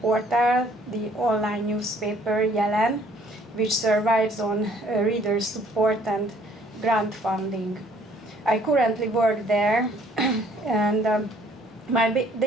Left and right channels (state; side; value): normal; both; correlation 0.60